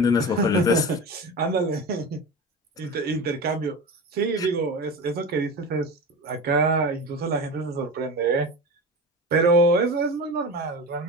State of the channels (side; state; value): both; normal; correlation 0.28